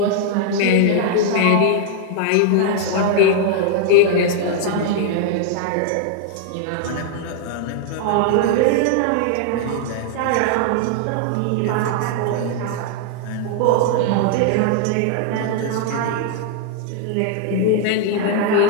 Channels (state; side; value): different; both; correlation -0.01